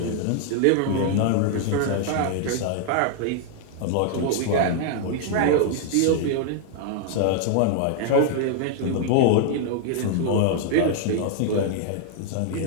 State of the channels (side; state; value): both; different; correlation 0.00